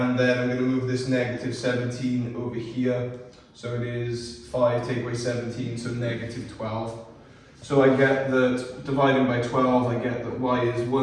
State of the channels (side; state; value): both; identical; correlation 1.00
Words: then I'm going to move this negative 17 over here, so it is 5 take away 17, so negative 12. So I get that dividing by 12, I get that y is